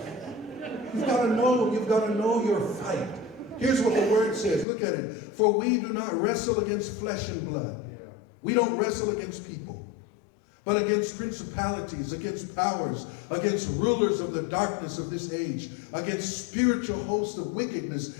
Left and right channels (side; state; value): right; drops out; at 4.7 s